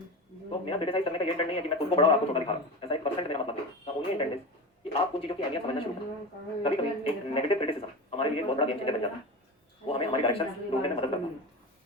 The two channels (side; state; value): both; normal; correlation 0.26